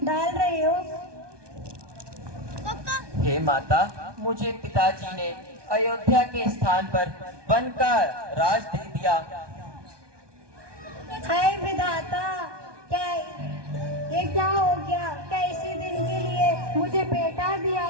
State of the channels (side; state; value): left; late; 1.2 ms